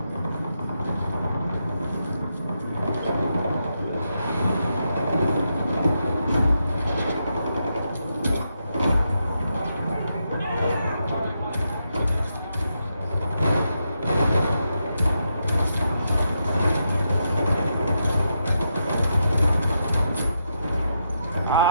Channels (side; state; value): both; inverted; correlation -0.83